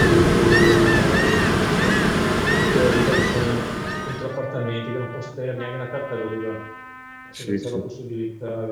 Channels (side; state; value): both; identical; correlation 1.00